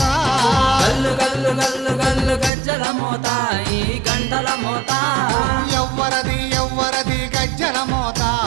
గల్లు గల్లు గల్లు గల్లు గజ్జల మోత ఈ గంటల మోత ఎవ్వరది ఎవ్వరది గజ్జల మోత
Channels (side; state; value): left; drops out; at 2.5 s